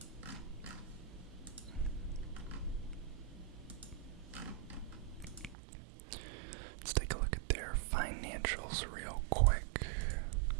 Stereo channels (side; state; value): left; drops out; at 5.6 s